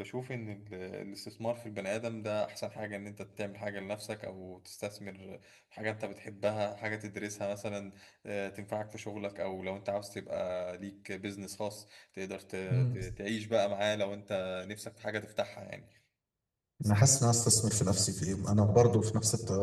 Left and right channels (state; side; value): identical; both; correlation 1.00